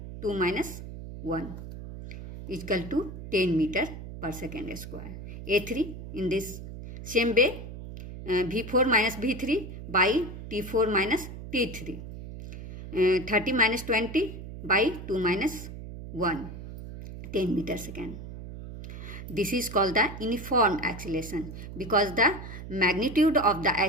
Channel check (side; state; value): right; noise; hum, 11 dB below the sound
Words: 2 minus 1 is equal to 10 meter per second square. A3 in this same way V4 minus V3 by T4 minus T3. 30 minus 20 by 2 minus 1, 10 meter second. This is called the uniform acceleration because the magnitude of the